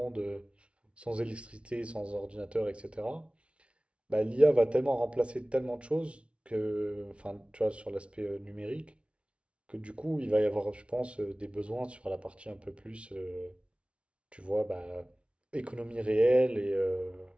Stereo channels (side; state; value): left; late; 0.060 ms